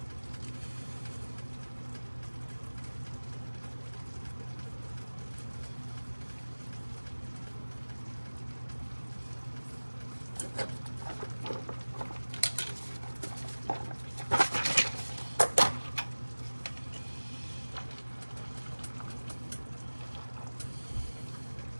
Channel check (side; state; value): both; inverted; correlation -1.00